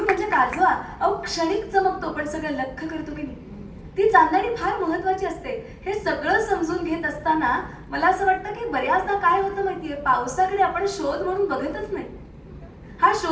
म्हणजे काजवा. अहो क्षणिक चमकतो पण सगळं लख करतो की नाही. ती चांदणी फार महत्वाची असते. हे सगळं समजून घेत असताना मला असं वाटतं की बऱ्याचदा काय होतं माहितीये, पावसाकडे आपण शोध म्हणून बघतच नाही. हा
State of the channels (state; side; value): identical; both; correlation 1.00